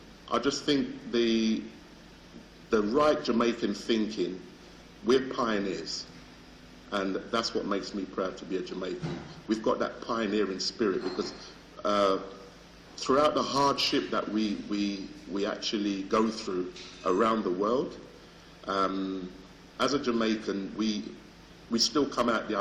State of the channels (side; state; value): both; identical; correlation 1.00